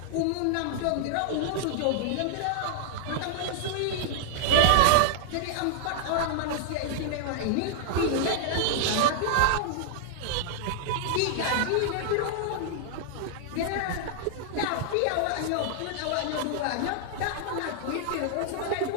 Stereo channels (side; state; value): both; different; correlation -0.01